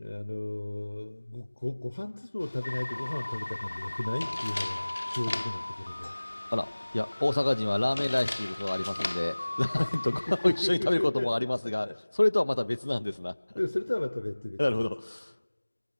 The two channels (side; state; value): both; inverted; correlation -1.00